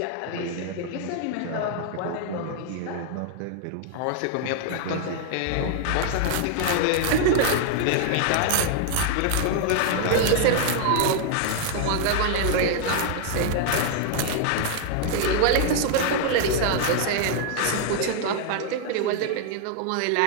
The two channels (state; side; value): different; both; correlation 0.00